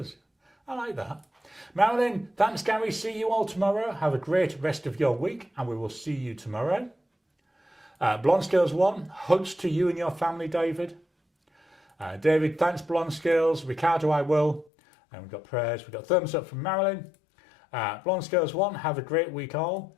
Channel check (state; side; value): drops out; right; at 14.7 s